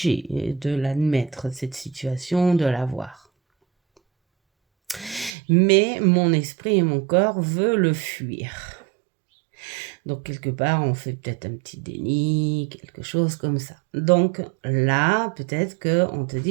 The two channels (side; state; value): left; drops out; at 5.3 s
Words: de l'admettre, cette situation, de la voir. Mais mon esprit et mon corps veulent le fuir. Donc, quelque part, on fait peut-être un petit déni, quelque chose comme ça. Donc, là, peut-être qu'on te